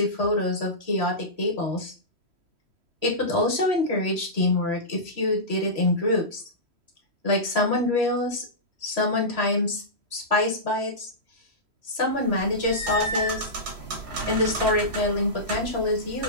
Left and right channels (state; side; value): late; left; 3.1 ms